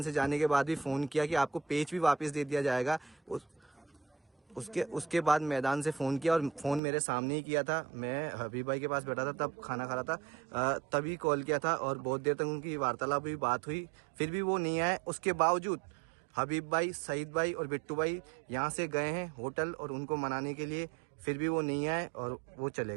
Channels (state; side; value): drops out; left; at 6.8 s